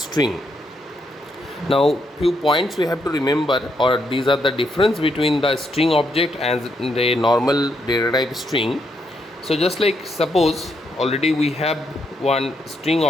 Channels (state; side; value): normal; both; correlation 0.77